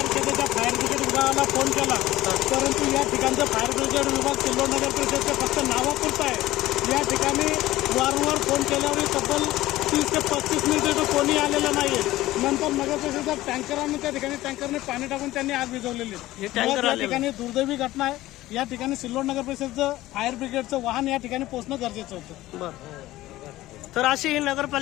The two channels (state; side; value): quieter; right; 16.4 dB